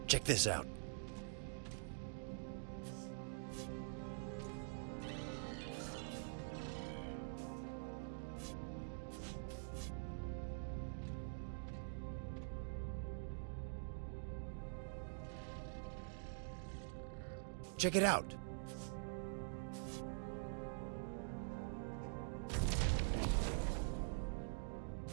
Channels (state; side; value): silent; left; digital silence